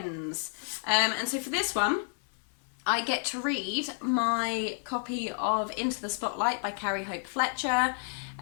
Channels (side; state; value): right; silent; 57 dB below the other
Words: And so for this one, I get to read my copy of Into the Spotlight by Carrie Hope Fletcher.